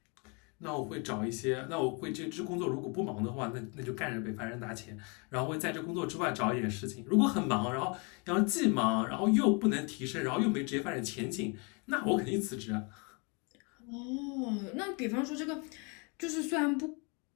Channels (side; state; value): right; quieter; 33.0 dB